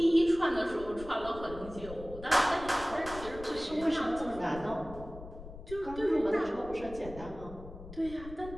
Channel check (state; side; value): noise; left; rumble, 14 dB below the sound